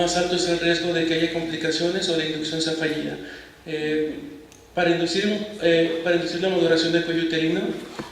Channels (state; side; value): identical; both; correlation 1.00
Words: alto es el riesgo de que haya complicaciones o la inducción sea fallida. Para inducir la maduración del cuello uterino,